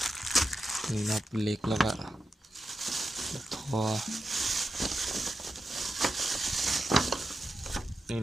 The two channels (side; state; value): both; normal; correlation 0.89